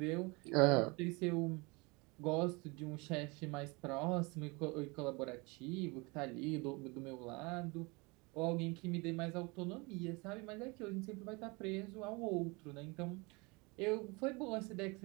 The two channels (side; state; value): left; quieter; 27.3 dB